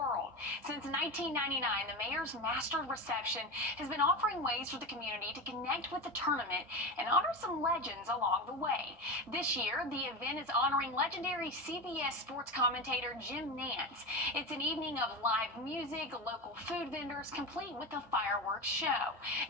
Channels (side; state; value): both; normal; correlation 0.22